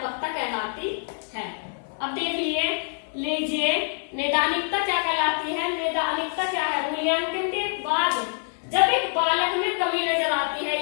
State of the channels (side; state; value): right; silent; 60 dB below the other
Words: कहलाती है। अब देख लीजिए नैदानिकता क्या कहलाती है। नैदानिकता क्या है? मूल्यांकन के बाद जब एक बालक में कमी नजर आती है,